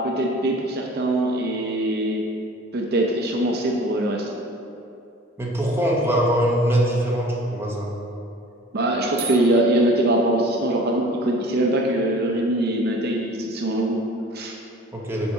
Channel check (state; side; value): normal; both; correlation 0.45